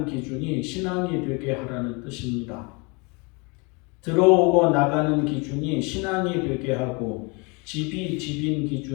기준이 신앙이 되게 하라는 뜻입니다. 들어오고 나가는 기준이 신앙이 되게 하고 집이 집인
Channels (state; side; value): quieter; right; 30.0 dB